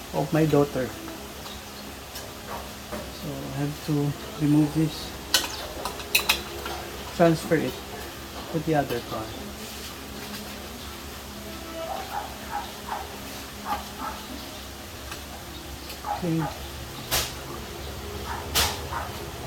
of my daughter. So I have to remove this, transfer it to the other car. Okay.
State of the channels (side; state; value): both; identical; correlation 1.00